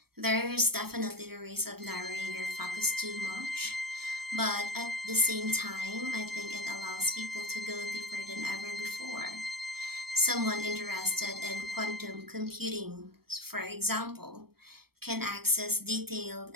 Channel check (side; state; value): left; late; 0.95 ms